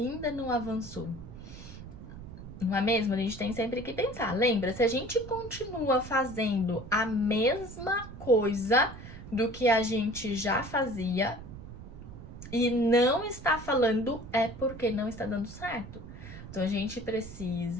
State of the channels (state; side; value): noise; right; rumble, 14 dB below the sound